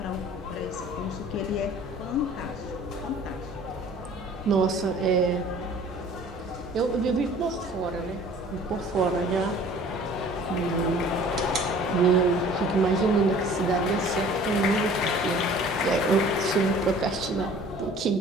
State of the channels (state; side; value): normal; both; correlation 0.49